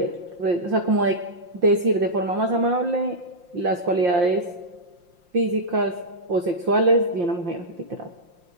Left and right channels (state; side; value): late; left; 5.7 ms